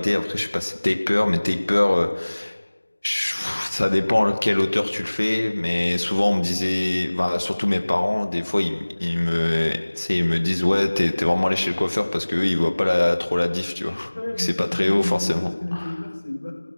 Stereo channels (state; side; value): inverted; both; correlation -1.00